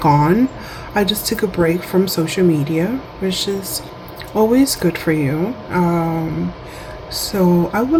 I just took a break from social media, which is always good for you. So I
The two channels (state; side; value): identical; both; correlation 1.00